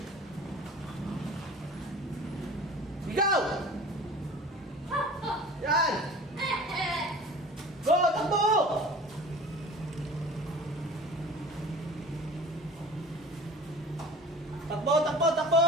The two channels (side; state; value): both; normal; correlation 0.41